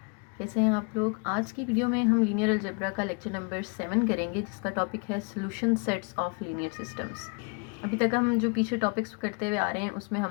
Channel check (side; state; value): right; quieter; 34.2 dB